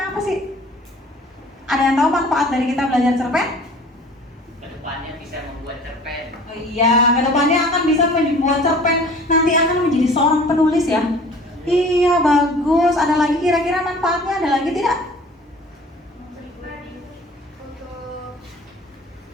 apa sih? Ada yang tahu manfaat dari kita belajar cerpen? Kedepannya bisa membuat cerpen. Oh iya, kedepannya akan bisa membuat cerpen. Nanti akan menjadi seorang penulis ya. Iya, bagus. Ada lagi kira-kira manfaatnya? Ada lagi tidak?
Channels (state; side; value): normal; both; correlation 0.47